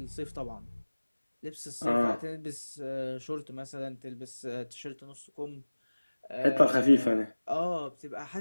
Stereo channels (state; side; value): inverted; both; correlation -1.00